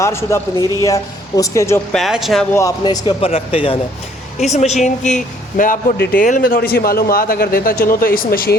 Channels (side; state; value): both; normal; correlation 0.61